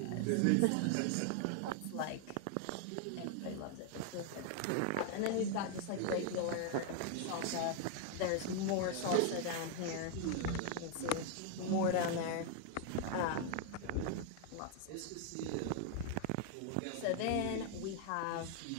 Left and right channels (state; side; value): different; both; correlation 0.00